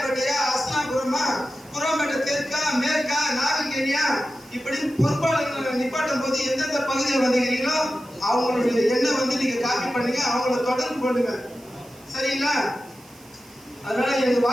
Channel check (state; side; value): noise; right; hiss, 25 dB below the sound